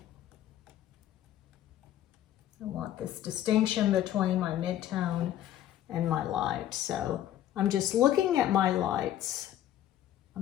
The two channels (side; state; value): right; quieter; 12.1 dB